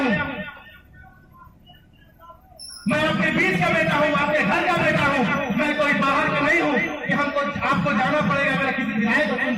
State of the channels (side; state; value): both; identical; correlation 1.00